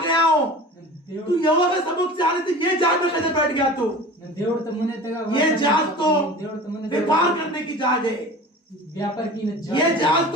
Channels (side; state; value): both; normal; correlation 0.38